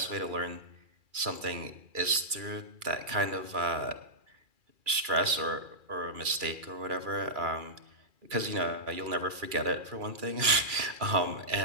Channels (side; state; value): left; late; 2.4 ms